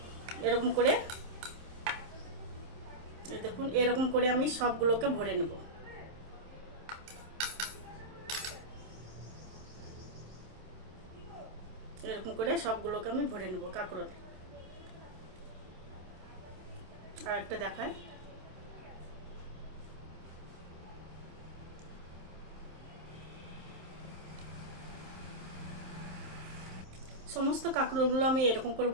এরকম করে, এই দেখুন এরকম করে আমি সবগুলোকে ভরে নেব। এরকম করে সবগুলোকে আমি ভরে নেব কাঁকরোল। আর একটা দেখায়, সমস্ত কাঁকরোলগুলো আমি এরকম করে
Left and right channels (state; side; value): late; left; 27 ms